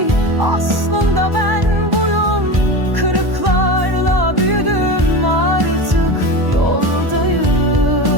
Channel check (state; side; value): late; left; 1.1 ms